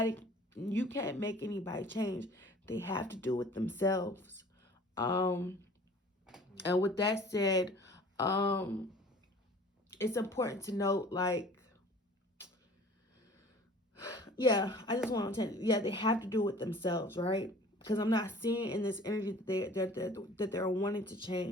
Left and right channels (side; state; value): both; normal; correlation 0.47